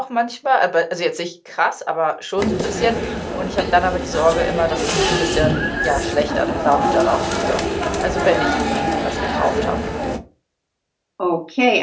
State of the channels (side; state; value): both; identical; correlation 1.00